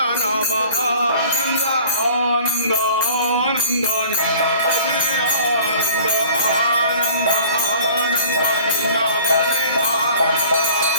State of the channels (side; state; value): both; inverted; correlation -0.48